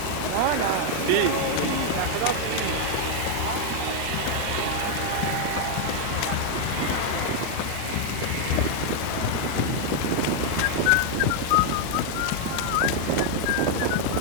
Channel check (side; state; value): both; different; correlation 0.00